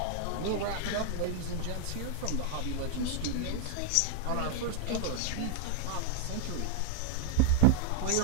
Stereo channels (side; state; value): both; different; correlation 0.00